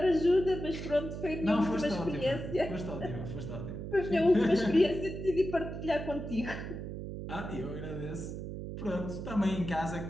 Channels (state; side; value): noise; right; hum, 7 dB below the sound